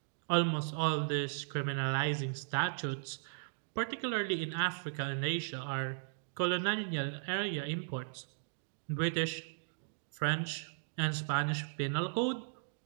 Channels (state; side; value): silent; left; digital silence